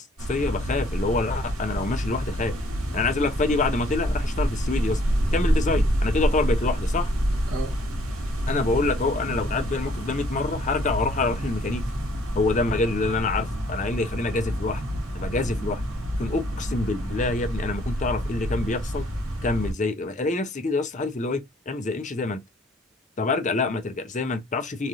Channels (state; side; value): normal; both; correlation 0.61